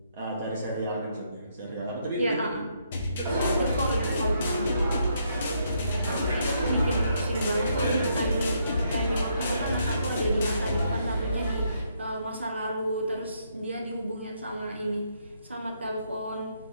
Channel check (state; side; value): inverted; both; correlation -0.74